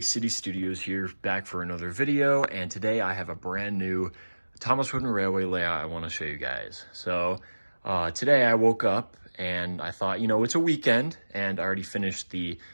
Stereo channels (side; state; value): both; inverted; correlation -1.00